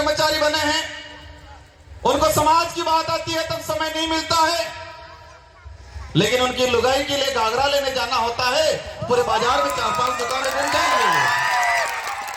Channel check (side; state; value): both; identical; correlation 1.00